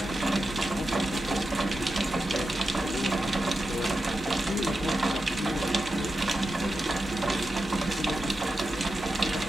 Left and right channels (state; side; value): normal; both; correlation 0.90